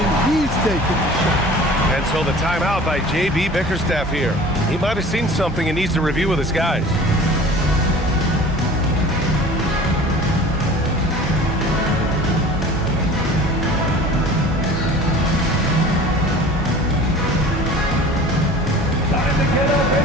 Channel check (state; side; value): normal; both; correlation 0.43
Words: he's taking the shot. And so the timeout by J.B. Bickerstaff here. He might have seen something and needs to review with his guys.